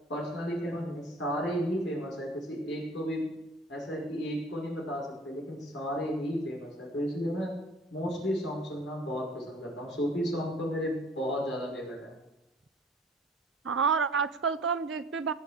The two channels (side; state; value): both; normal; correlation 0.50